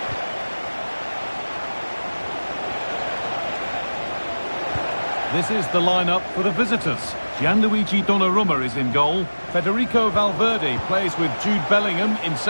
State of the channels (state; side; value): inverted; both; correlation -1.00